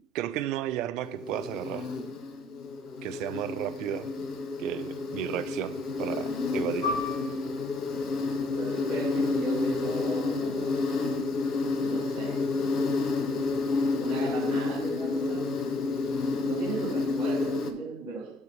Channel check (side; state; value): both; normal; correlation 0.65